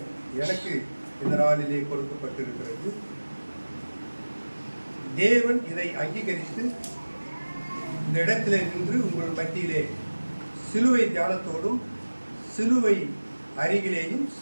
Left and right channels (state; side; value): inverted; both; correlation -1.00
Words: எனக்கு இந்த நாளிலே கொடுக்கப்பட்டிருக்கிறது. தேவன் இதை அங்கீகரித்து இந்த இடத்திலே நின்று உங்கள் மத்தியிலே சிலுவை தியானத்தோடும் சிலுவை அருகிலேயும்